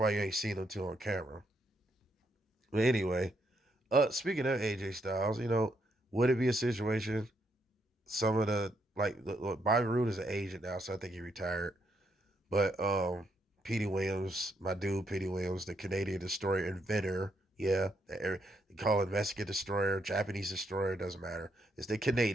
you ain't seen him too on camera. But anyway, speaking of AJ Styles, you know, would it be a situation? Some of the look, Bobby Roode is an agent now, so I think he retired. But Petey Williams, my dude, Petey Williams, the Canadian destroyer inventor. Yeah, they call it Mexican destroyer, Japanese destroyer, doesn't matter. It's the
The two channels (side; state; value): both; normal; correlation 0.77